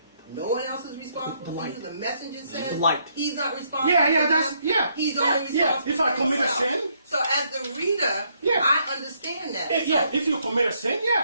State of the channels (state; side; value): inverted; both; correlation -0.72